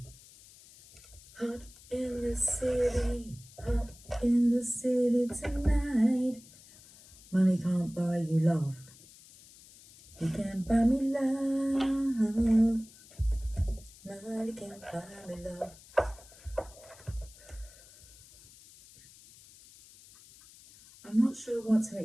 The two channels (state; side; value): noise; left; hiss, 22 dB below the sound